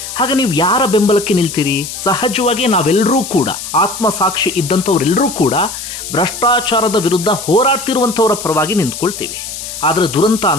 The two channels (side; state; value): left; noise; hiss, 9 dB below the sound